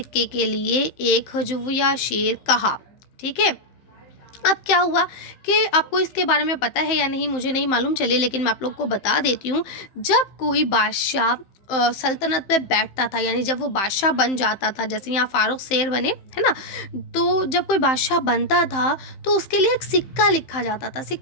के लिए एक हजविया शेर कहा। ठीक है। अब क्या हुआ कि आपको इसके बारे में पता है या नहीं मुझे नहीं मालूम, चलिए लेकिन मैं आप लोग को बता देती हूँ। जब कोई बादशाह सल्तनत पे बैठता था, यानी जब वो बादशाह बन जाता था, जैसे यहाँ फारूक शेर बने, है ना, तो जब कोई बादशाह बनता था तो उसके लिए एक सिक्का लिखा जाता था।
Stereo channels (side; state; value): right; late; 15 ms